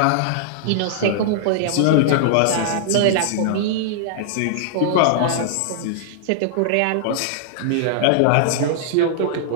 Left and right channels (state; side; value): different; both; correlation -0.01